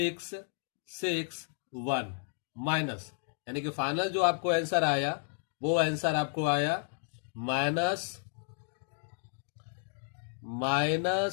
6, 1 माइनस, यानी कि फाइनल जो आपको आंसर आया वो आंसर आपको आया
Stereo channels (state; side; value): silent; right; digital silence